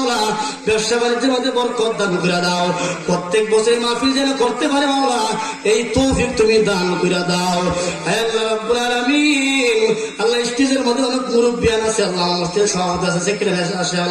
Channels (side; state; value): both; identical; correlation 1.00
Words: ব্যবসা বাণিজ্যের মধ্যে বরকত দান করে দাও, প্রত্যেক বছর মাহফিল যেন করতে পারে মাওলা এই তৌফিক তুমি দান করে দাও আল্লাহ রাব্বুল আলামিন। আল্লাহ স্টেজের মধ্যে অনেক মুরব্বিয়ান আছে আল্লাহ, মসজিদের সভাপতি আছে, সেক্রেটারি আছে